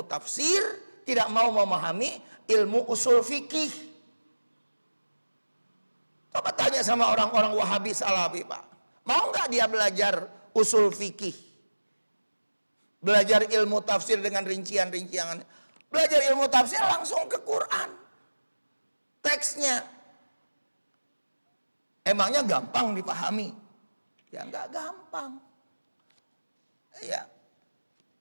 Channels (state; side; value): inverted; both; correlation -1.00